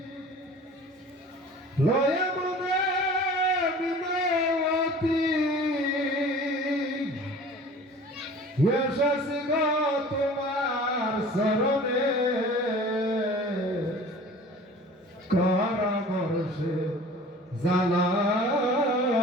লয়া মনে বিনয়তী এসেছি গো তোমার শরণে কর বর্ষে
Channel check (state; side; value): normal; both; correlation 0.44